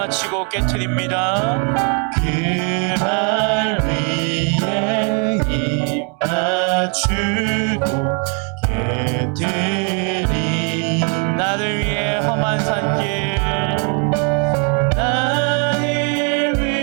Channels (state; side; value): quieter; left; 38.9 dB